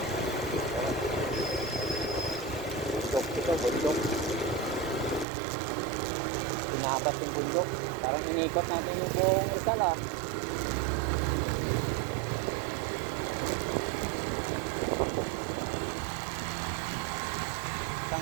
Ito, bundok. Pinapas yung bundok. Parang inikot natin yung buong Rizal ah.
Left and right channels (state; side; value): drops out; left; at 5.2 s